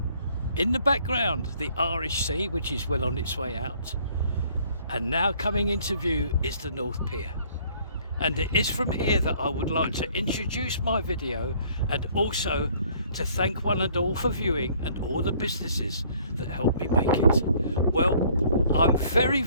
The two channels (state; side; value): inverted; both; correlation -0.59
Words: In the background, the Irish Sea, which is well on its way out. And now coming into view is the North Pier. And it is from here that I would like to introduce my video and also to thank one and all for viewing and all the businesses that helped me make it. Well, I'm very,